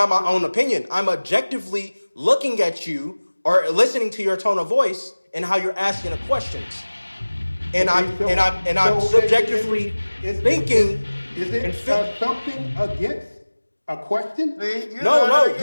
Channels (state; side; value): inverted; both; correlation -1.00